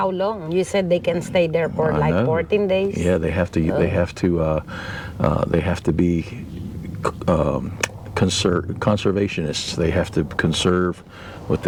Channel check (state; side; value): identical; both; correlation 1.00